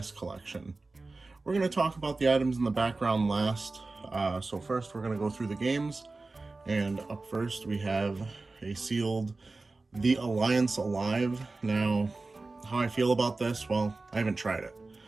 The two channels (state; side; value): quieter; left; 3.5 dB